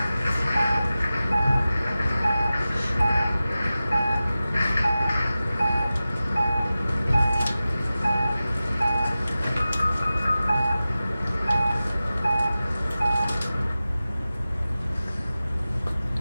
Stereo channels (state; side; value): inverted; both; correlation -0.95